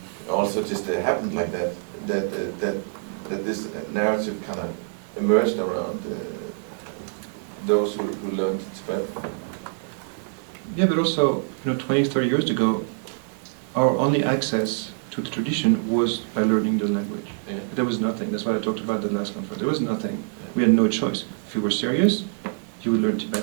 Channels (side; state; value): left; silent; 62 dB below the other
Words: also just happened like that. That this narrative kind of emerged around those who learned Tibetan. Yeah, but also, you know, 20, 30 years ago, our only access to the tradition was by learning the language. Yeah. There was nothing. That's what I talked about the last conference. There was nothing. We had no choice. If you were serious, you would learn